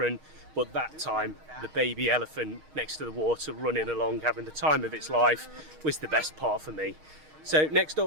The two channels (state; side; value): late; left; 6.4 ms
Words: but that time the baby elephant next to the water running along having the time of its life was the best part for me. So next